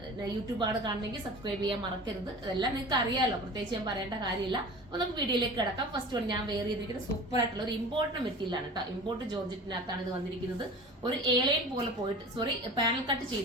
യൂട്യൂബാണ് കാണണമെങ്കിൽ സബ്സ്ക്രൈബ് ചെയ്യാൻ മറക്കരുത്. അതെല്ലാം നിങ്ങൾക്ക് അറിയാലോ, പ്രത്യേകിച്ച് ഞാൻ പറയേണ്ട കാര്യമില്ല. അപ്പൊ നമുക്ക് വീഡിയോയിലേക്ക് കിടക്കാം. ഫസ്റ്റ് വൺ ഞാൻ വെയർ ചെയ്തിരിക്കുന്നത് സൂപ്പർ ആയിട്ടുള്ള ഒരു ഇമ്പോർട്ട് മെറ്റീരിയലാണ് കേട്ടോ. ഇമ്പോർട്ട് ജോർജറ്റിനകത്താണ് ഇത് വന്നിരിക്കുന്നത്. ഒരു എലൈൻ പോലെ പോയിട്ട് പാനൽ കട്ട്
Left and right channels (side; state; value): both; normal; correlation 0.38